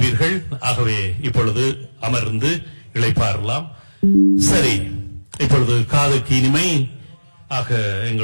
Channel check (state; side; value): inverted; both; correlation -1.00